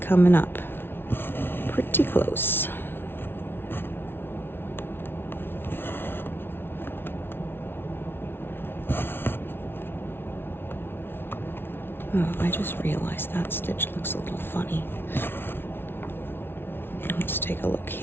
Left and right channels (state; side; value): late; right; 0.11 ms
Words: up pretty close. Oh, I just realized that stitch looks a little funny. Let's take a look